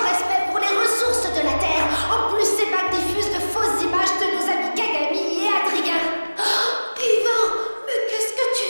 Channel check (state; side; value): inverted; both; correlation -1.00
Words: respect pour les ressources de la Terre. En plus, ces bacs diffusent de fausses images de nos amis Kagami et Adrien. Oh, Ivan, mais qu'est-ce que tu